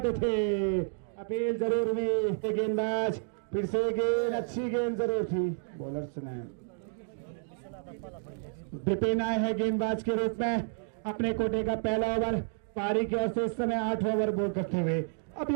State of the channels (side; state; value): left; silent; 57 dB below the other